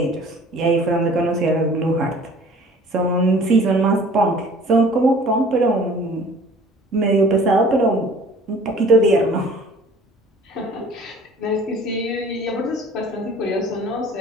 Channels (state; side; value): normal; both; correlation 0.49